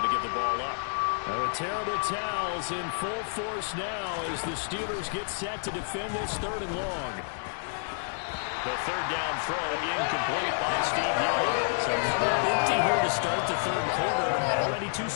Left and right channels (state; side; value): silent; right; digital silence